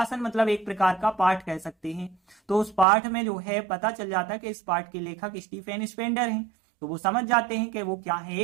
मतलब एक प्रकार का पाठ कह सकते हैं। तो उस पाठ में जो है पता चल जाता है कि इस पाठ के लेखक स्टीफेन स्पेंडर हैं। तो वो समझ जाते हैं कि वो क्या है,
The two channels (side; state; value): left; drops out; at 2.9 s